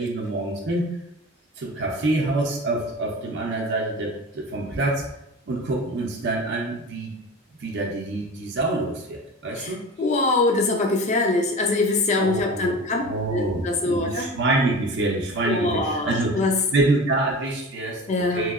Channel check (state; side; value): normal; both; correlation 0.34